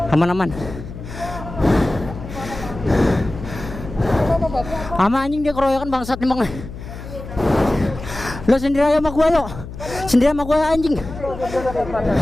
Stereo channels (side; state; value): left; noise; hum, 12 dB below the sound